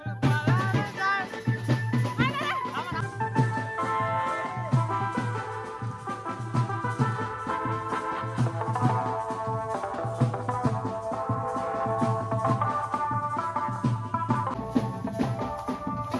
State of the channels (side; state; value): both; identical; correlation 1.00